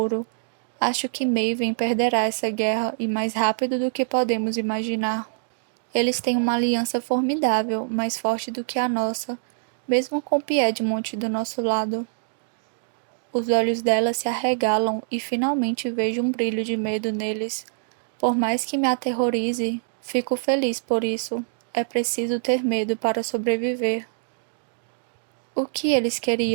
acho que Maven perderá essa guerra e mais rápido do que podemos imaginar. Eles têm uma aliança formidável, mais forte do que a nossa, mesmo com Piedmont do nosso lado. Os olhos dela se arregalam e finalmente vejo um brilho de medo neles. Por mais que me aterrorize, fico feliz por isso. É preciso ter medo para sobreviver. O que eles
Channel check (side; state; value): left; silent; digital silence